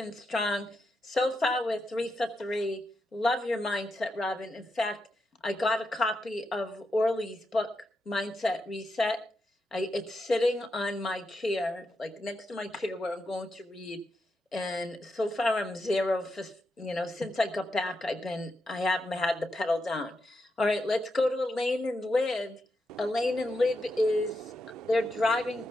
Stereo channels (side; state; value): both; normal; correlation 0.85